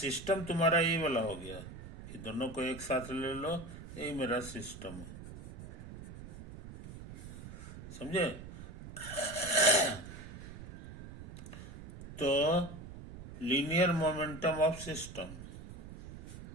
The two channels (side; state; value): right; noise; rumble, 13 dB below the sound